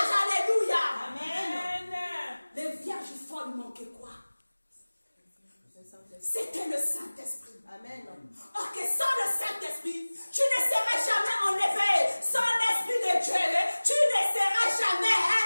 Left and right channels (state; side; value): inverted; both; correlation -1.00